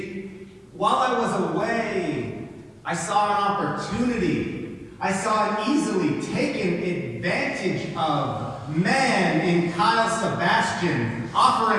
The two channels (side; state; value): both; identical; correlation 1.00